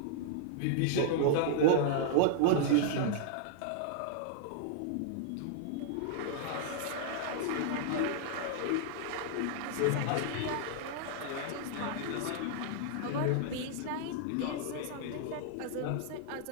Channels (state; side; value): different; both; correlation -0.01